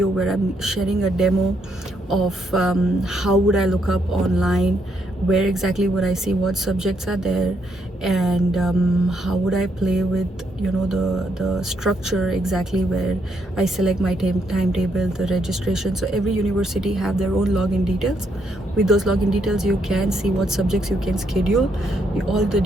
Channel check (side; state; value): both; normal; correlation 0.75